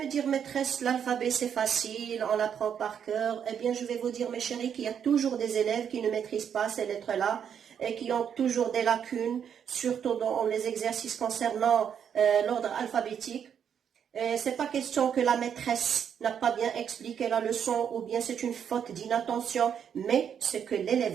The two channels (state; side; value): quieter; left; 8.1 dB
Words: dire, maîtresse, l'alphabet c'est facile, on l'apprend par cœur. Eh bien, je vais vous dire, mes chéris, qu'il y a toujours des élèves qui ne maîtrisent pas ces lettres-là et qui ont toujours des lacunes, surtout dans les exercices concernant l'ordre alphabétique. C'est pas question que la maîtresse n'a pas bien expliqué la leçon ou bien c'est une faute d'inattention, mais c'est que